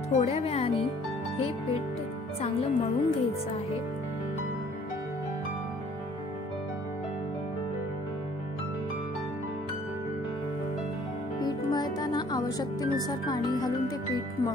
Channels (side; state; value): both; normal; correlation 0.57